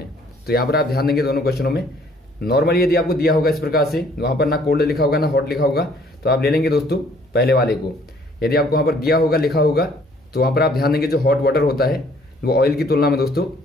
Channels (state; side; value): normal; both; correlation 0.60